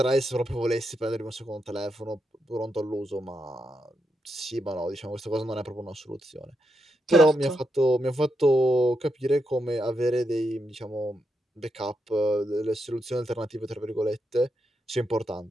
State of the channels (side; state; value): both; normal; correlation 0.83